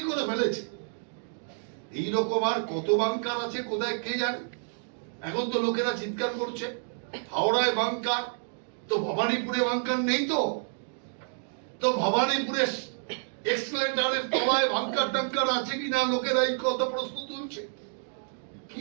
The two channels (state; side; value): silent; left; digital silence